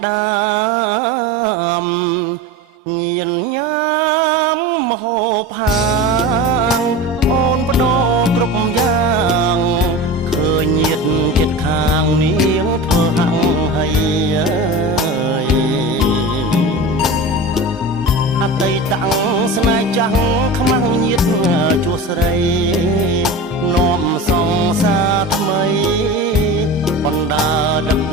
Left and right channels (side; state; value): both; normal; correlation 0.30